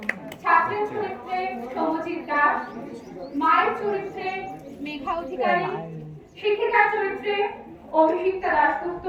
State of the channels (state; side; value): identical; both; correlation 1.00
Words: ছাত্রের চরিত্রে সৌমজিৎ দাস, মায়ের চরিত্রে মেঘা অধিকারী, শিক্ষিকার চরিত্রে অভিষিক্তা দাশগুপ্ত,